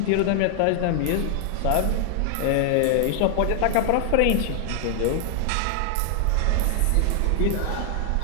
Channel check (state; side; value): different; both; correlation 0.00